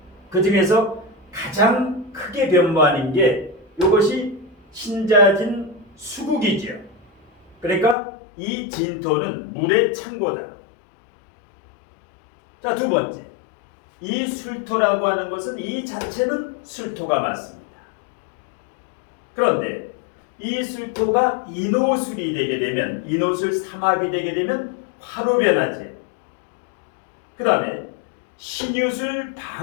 그 중에서 가장 크게 변모하는 게 이것이 신자진 수국이죠. 그러니까 이 진토는 물의 창고다. 자, 두 번째, 이 술토라고 하는 것은 이 자체는 술토가 맞습니다. 그런데 이 술토가 인호술이 되게 되면, 인호술 삼합이 되게 되면 화로 변하지. 그 다음에 신유술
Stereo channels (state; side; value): drops out; right; at 8.0 s